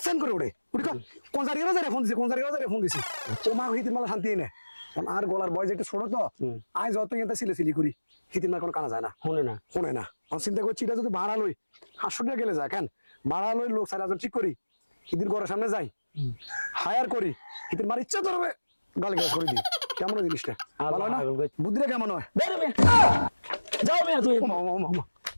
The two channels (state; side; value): inverted; both; correlation -1.00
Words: করে ওড়ে উঠি কোন জায়গায় ফোন দিছে কোন জায়গায় ফোন দিছে ও মা হিতির মালা শান্তি নেই আর গলার বয়স একটু ছোট তো আজ যত এটা সিলে করি হিতির মা কোনো কানা যায় না শোনে না আমি চিন্তা করছি এটা যদি ভাড়া লই 500 টাকা গেলে যায় কেন ভাড়া লই লোক 4,000 ঠিক করি হিতির ঘরের সামনে যাই হায়ার করি হিতির মার ইচ্ছা ধরবে গালি গাছ করে দিই কেমন জিনিসটা ভালো না বুদ্ধিটা কেমন হয় যাও মেয়ে তুই